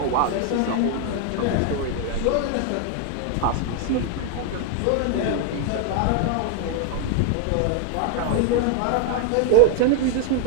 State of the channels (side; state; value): both; different; correlation 0.00